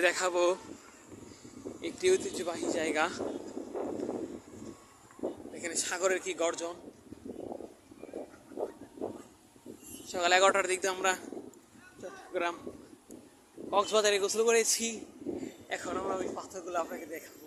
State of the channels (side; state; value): both; identical; correlation 1.00